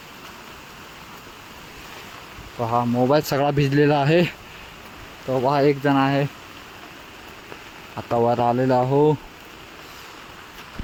पहा मोबाईल सगळा भिजलेला आहे. तो पहा एक जण आहे आता वर आलेला आहो.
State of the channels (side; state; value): both; identical; correlation 1.00